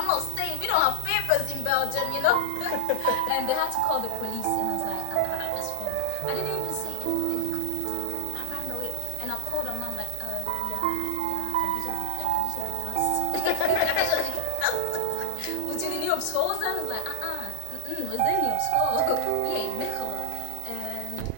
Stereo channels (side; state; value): both; different; correlation 0.00